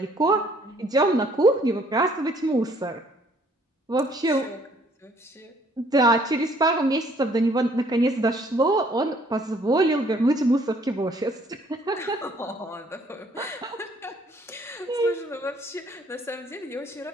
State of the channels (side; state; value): both; normal; correlation 0.62